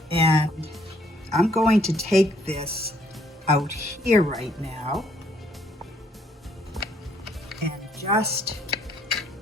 And I'm going to take this out here right now and just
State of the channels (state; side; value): normal; both; correlation 0.66